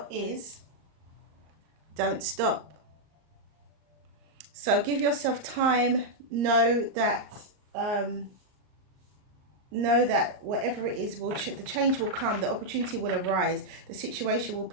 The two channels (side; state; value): left; late; 38 ms